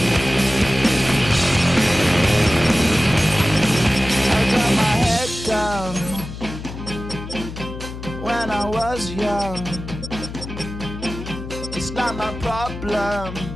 When I was young, it's not my problem.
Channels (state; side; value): noise; left; hum, 10 dB below the sound